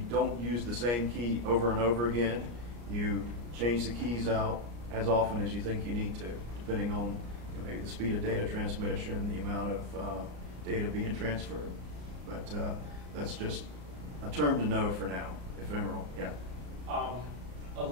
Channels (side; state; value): left; late; 34 ms